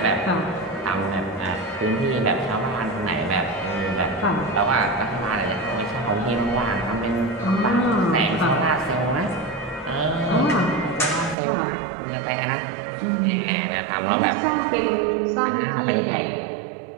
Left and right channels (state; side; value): drops out; left; at 11.4 s